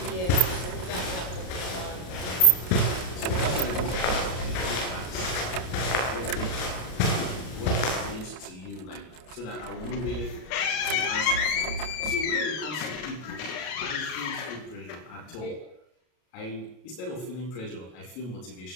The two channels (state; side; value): late; right; 33 ms